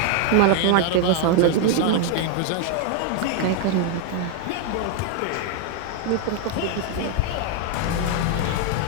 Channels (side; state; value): both; different; correlation 0.00